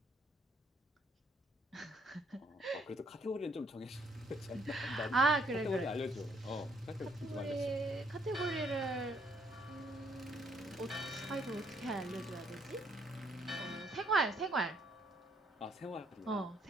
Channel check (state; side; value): normal; both; correlation 0.68